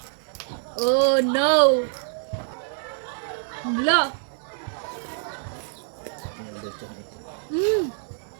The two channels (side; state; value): left; silent; 61 dB below the other